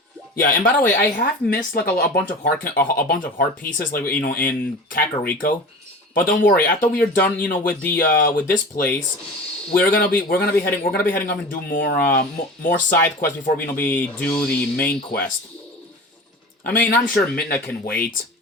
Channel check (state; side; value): normal; both; correlation 0.35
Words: Yeah, and by the way, I have missed like a bunch of heart pieces, like in Kakariko. But don't worry, after we are done, with this place, we're gonna be heading up and do more side quests before we do the main quest. I mean, I'm sure Midna can wait.